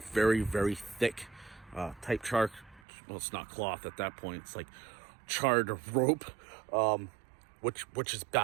thick type char. Well, it's not cloth at that point. It's like charred rope, which is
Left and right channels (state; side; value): drops out; left; at 2.8 s